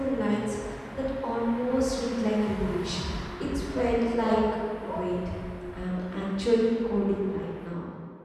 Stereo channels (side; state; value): both; identical; correlation 1.00